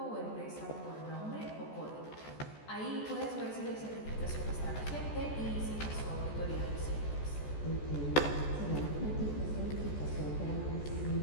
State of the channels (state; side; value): late; right; 14 ms